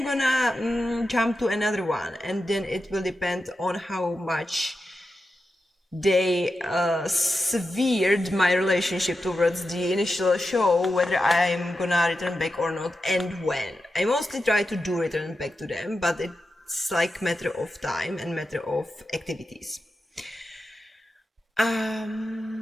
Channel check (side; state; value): both; normal; correlation 0.90